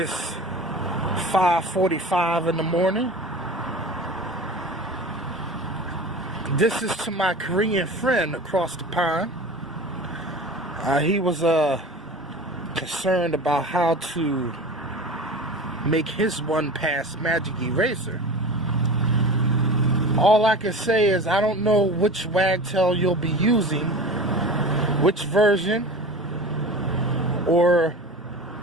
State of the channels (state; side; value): normal; both; correlation 0.35